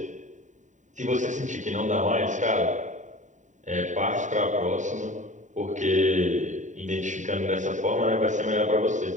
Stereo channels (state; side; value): late; left; 0.36 ms